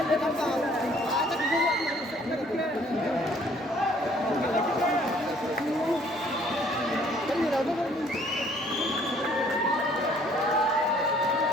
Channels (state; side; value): normal; both; correlation 0.60